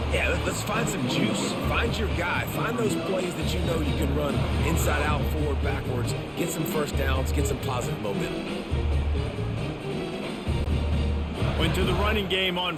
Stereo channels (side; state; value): both; identical; correlation 1.00